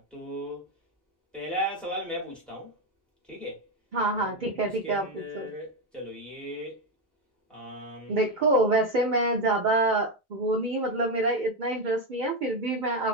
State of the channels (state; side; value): normal; both; correlation 0.10